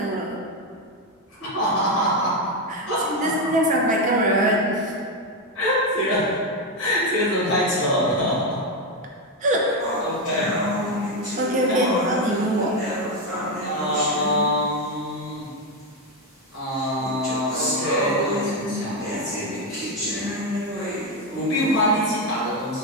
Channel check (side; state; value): both; normal; correlation 0.08